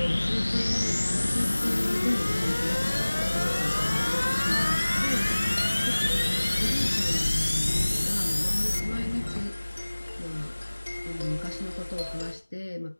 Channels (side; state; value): both; inverted; correlation -1.00